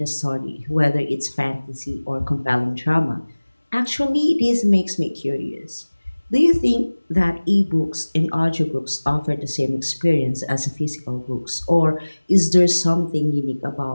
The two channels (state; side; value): inverted; both; correlation -1.00